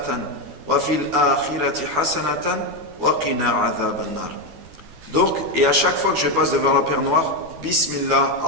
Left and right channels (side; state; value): left; late; 12 ms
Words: wa fil akhirati hasanatan wa qina adhaban nar. Donc, et à chaque fois que je passe devant la pierre noire, Bismillah,